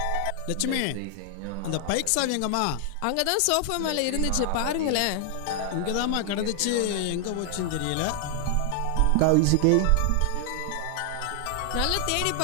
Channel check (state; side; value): different; both; correlation 0.00